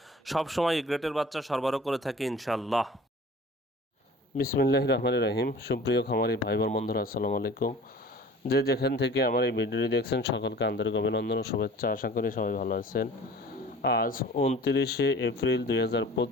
সবসময় গ্রেটের বাচ্চা সরবরাহ করে থাকি ইনশাল্লাহ। বিসমিল্লাহির রহমানির রহিম। সুপ্রিয় খামারি ভাই বোন বন্ধুরা, আসসালামু আলাইকুম। যে যেখান থেকে আমার এই ভিডিওটি দেখছেন সকলকে আন্তরিক অভিনন্দন ও শুভেচ্ছা। আশা করি সবাই ভালো আছেন। আজ 29শে এপ্রিল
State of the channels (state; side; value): normal; both; correlation 0.45